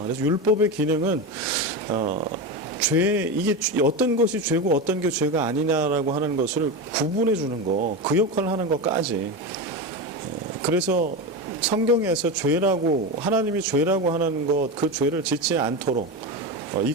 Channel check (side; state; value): both; normal; correlation 0.19